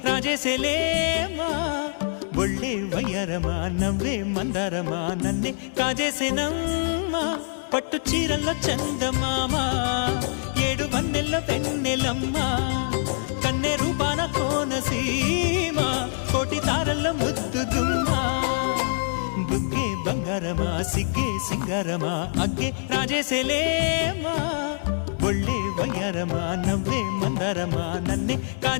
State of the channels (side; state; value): right; silent; digital silence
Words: రాజేసేలేమా ఒళ్ళే వయ్యారమా నవ్వే మందారమా నన్నే కాజేసేనమ్మా పట్టు చీరల్లో చందమామా ఏడు వన్నెల్లో వెన్నెలమ్మా కన్నె రూపాన కోనసీమ కోటి తారల్లో ముద్దుదుమ్మా బుగ్గే బంగారమా సిగ్గే సింగారమా అగ్గే రాజేసేలేమా ఒళ్ళే వయ్యారమా నవ్వే మందారమా నన్నే